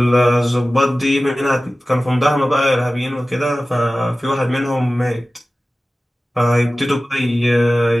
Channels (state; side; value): normal; both; correlation 0.96